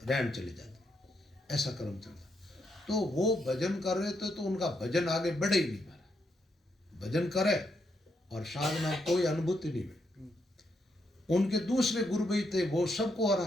चले जाते। ऐसा क्रम चलता। तो वो भजन कर रहे थे तो उनका भजन आगे बढ़े ही नहीं पाया। भजन करे और साधना कोई अनुभूति नहीं हुई। उनके दूसरे गुरु भाई थे, वो सबको हो रहा।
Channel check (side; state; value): both; normal; correlation 0.79